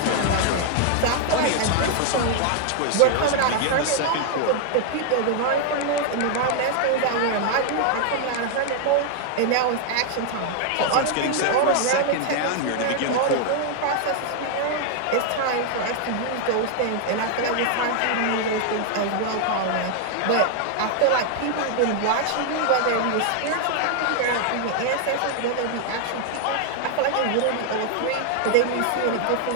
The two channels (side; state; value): both; different; correlation 0.00